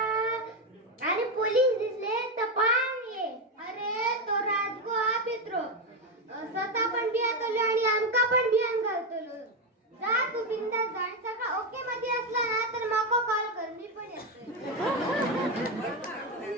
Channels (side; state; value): both; normal; correlation 0.09